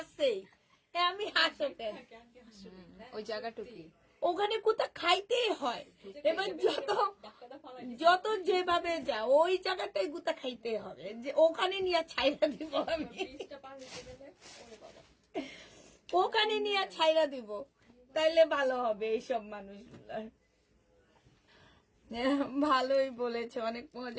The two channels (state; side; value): identical; both; correlation 1.00